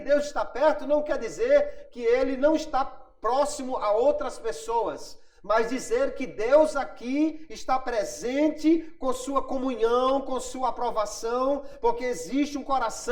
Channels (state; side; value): identical; both; correlation 1.00